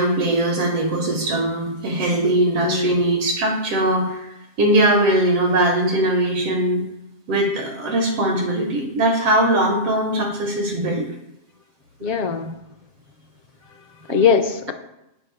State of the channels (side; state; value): left; late; 7.4 ms